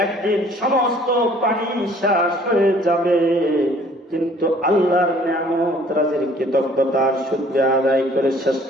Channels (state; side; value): normal; both; correlation 0.56